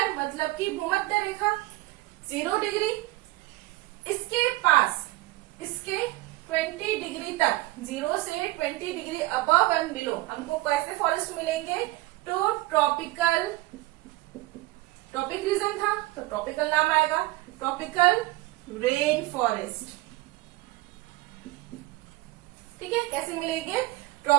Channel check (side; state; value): left; quieter; 19.3 dB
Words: मतलब कि भूमध्य रेखा 0 डिग्री, इसके पास इसके 20 डिग्री तक, 0 से 20 डिग्री अबव एंड बिलो हमको कैसे फॉरेस्ट मिलेंगे, तो ट्रॉपिक रीजन था तो ट्रॉपिकल नाम आएगा, ट्रॉपिकल रेन फॉरेस्ट। ठीक है, कैसे मिलेंगे,